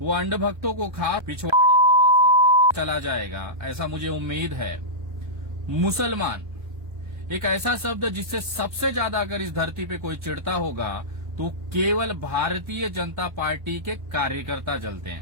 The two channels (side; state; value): left; late; 1.3 ms